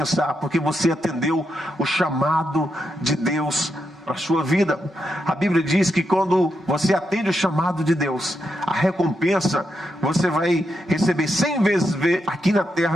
porque você atendeu o chamado de Deus para a sua vida. A Bíblia diz que quando você atende o chamado de Deus, a recompensa você vai receber 100 vezes aqui na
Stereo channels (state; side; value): normal; both; correlation 0.84